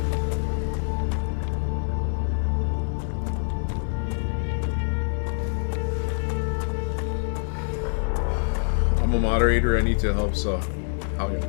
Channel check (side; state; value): right; silent; digital silence